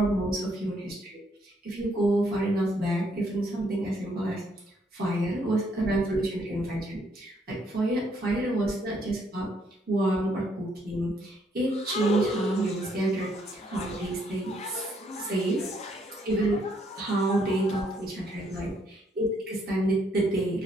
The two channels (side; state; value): both; normal; correlation 0.71